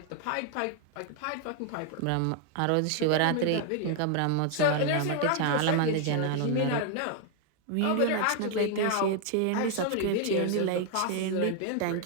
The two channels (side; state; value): both; different; correlation 0.00